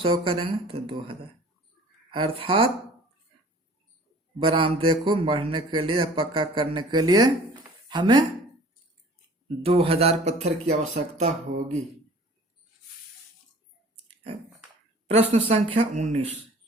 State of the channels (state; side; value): normal; both; correlation 0.47